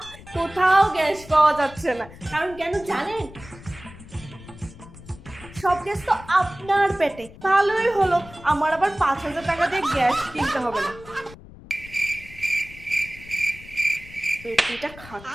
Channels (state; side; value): noise; left; rumble, 18 dB below the sound